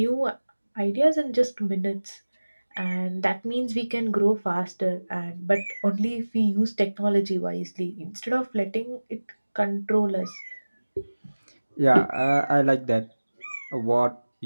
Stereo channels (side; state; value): both; inverted; correlation -1.00